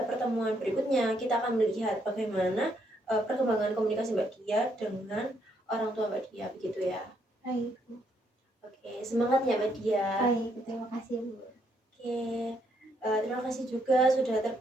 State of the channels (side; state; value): both; normal; correlation 0.73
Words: pertemuan berikutnya kita akan melihat bagaimana perkembangan komunikasi Mbak Dia dengan orang tua Mbak Dia, begitu ya. Baik. Oke, semangat ya Mbak Dia. Baik, terima kasih Bu. Oke, terima kasih juga sudah